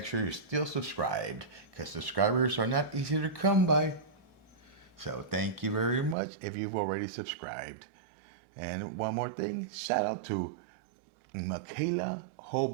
sure you're still subscribed, because subscribers are not easy to come by. So thank you very much if you've already subscribed. And one more thing, shout out to Michaela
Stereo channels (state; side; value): drops out; left; at 6.2 s